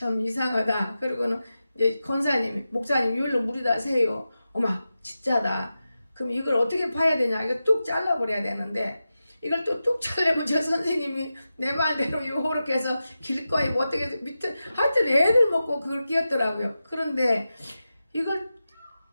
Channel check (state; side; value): inverted; both; correlation -0.92